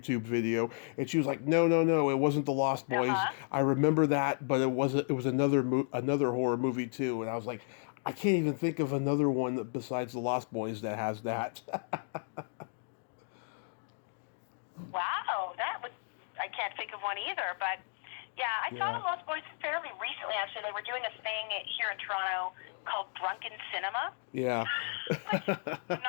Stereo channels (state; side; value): silent; right; digital silence